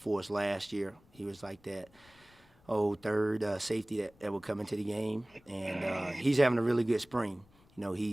us last year. He was like that third safety that would come into the game, and he's having a really good spring. You know,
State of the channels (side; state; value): left; noise; rumble, 29 dB below the sound